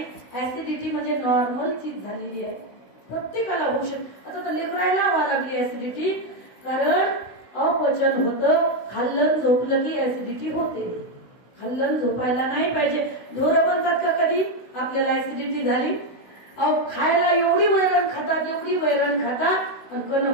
ऍसिडिटी म्हणजे नॉर्मल चीज झालेली आहे, प्रत्येकाला होऊ शकते. आता तर लेकरायला व्हायला लागली ऍसिडिटी, कारण अपचन होतं. खाल्लं झोपलं की ऍसिडिटी होते. खाल्लं झोपायला नाही पाहिजे. ढोरं म्हणतात का कधी आपल्याला ऍसिडिटी झाली? अहो खायला एवढी वैरण खातात, एवढी वैरण खातात आणि कण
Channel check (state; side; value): late; right; 16 ms